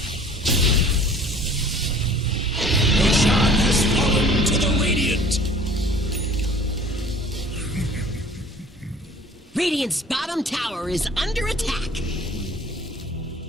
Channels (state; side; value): normal; both; correlation 0.49